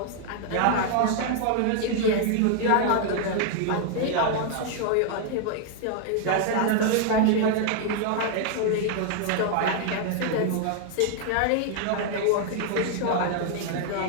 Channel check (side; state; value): both; different; correlation 0.00